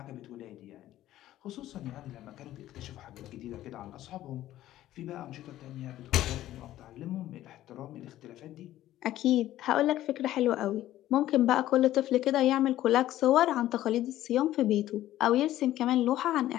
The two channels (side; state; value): right; quieter; 13.9 dB